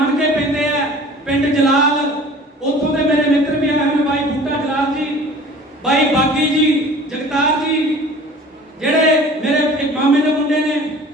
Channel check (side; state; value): both; normal; correlation 0.45